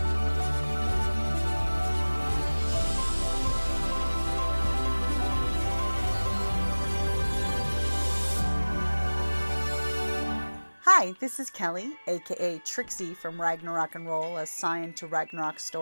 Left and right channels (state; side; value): inverted; both; correlation -1.00